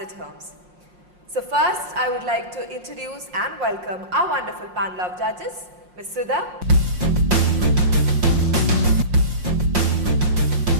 Homes. So first I would like to introduce and welcome our wonderful panel of judges, Ms. Sudha,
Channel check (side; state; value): left; late; 5.6 ms